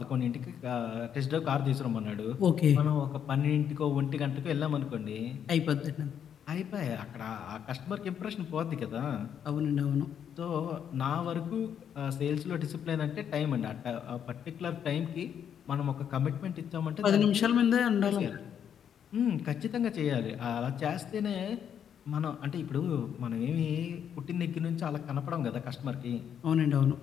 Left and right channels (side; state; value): right; quieter; 8.6 dB